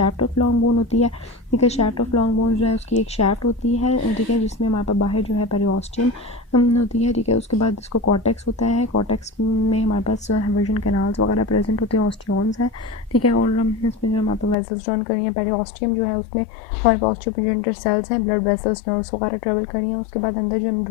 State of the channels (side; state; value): right; drops out; at 14.6 s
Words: ऑफ लॉन्ग बोन होती है, ठीक है। शैफ्ट ऑफ लॉन्ग बोन जो है उसकी एक शैफ्ट होती है, ठीक है, जिसमें हमारे पास बाहर जो है पेरिओस्टियम होती है, ठीक है। उसके बाद इसको कॉर्टेक्स होता है, कॉर्टेक्स में हमारे पास हेवरजन कैनाल्स वगैरह प्रेजेंट होते हैं, ऑस्टियोन्स हैं, ठीक है। और इसमें जो हमारे पास वेसल्स जॉइन करी हैं, पेरिओस्टियम जो है उसमें हमारे पास ऑस्टियोप्रोजेनिटर सेल्स हैं, ब्लड वेसल्स नर्व्स वगैरह ट्रेवल करी हैं। उसके बाद अंदर जो